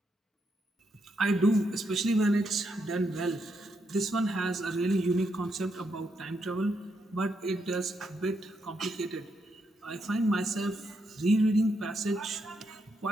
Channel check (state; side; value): normal; both; correlation 0.80